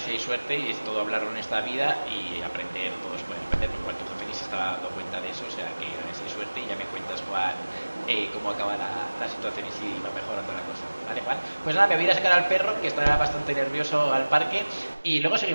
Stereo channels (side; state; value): both; inverted; correlation -1.00